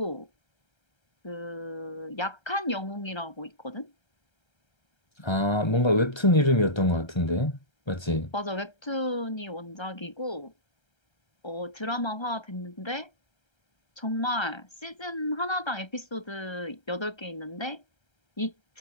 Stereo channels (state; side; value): late; right; 1.3 ms